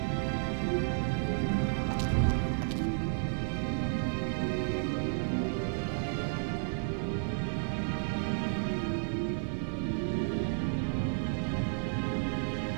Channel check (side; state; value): left; silent; digital silence